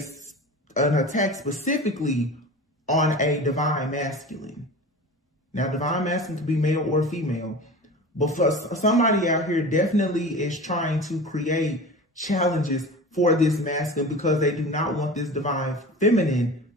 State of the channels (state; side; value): normal; both; correlation 0.34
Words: attack specifically on a divine masculine. Now, divine masculine could be male or female, but for somebody out here definitely is trying to create challenges for this masculine because they do not want this divine feminine